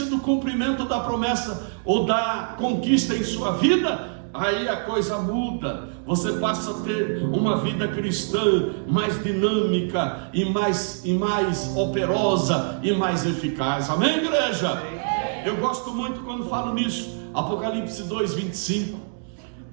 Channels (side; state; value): left; silent; digital silence